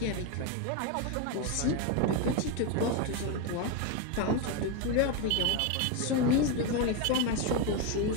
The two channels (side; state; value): both; different; correlation 0.02